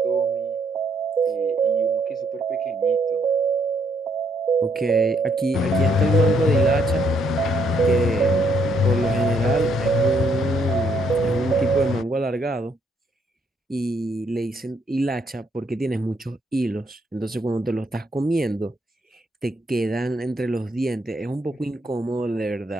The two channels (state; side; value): normal; both; correlation 0.71